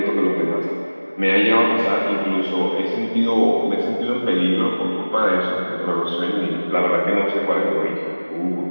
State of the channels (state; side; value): inverted; both; correlation -1.00